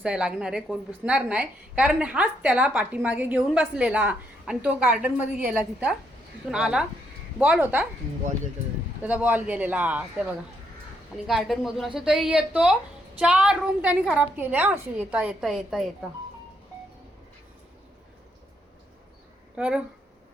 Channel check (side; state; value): both; normal; correlation 0.75